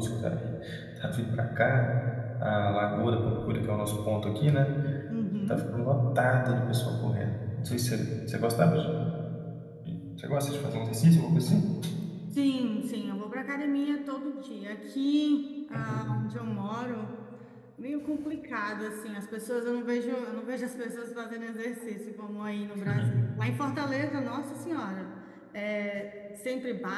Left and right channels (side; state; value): both; identical; correlation 1.00